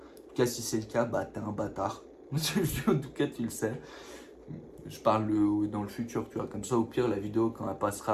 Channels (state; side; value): identical; both; correlation 1.00